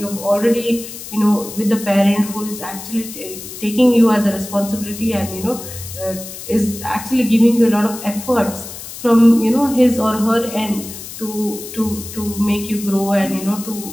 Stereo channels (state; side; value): noise; left; hiss, 12 dB below the sound